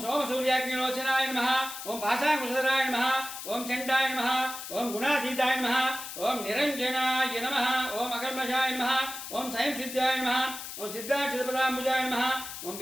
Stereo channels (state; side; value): noise; left; hiss, 9 dB below the sound